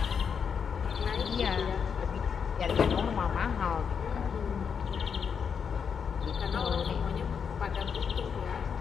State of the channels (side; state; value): right; quieter; 6.7 dB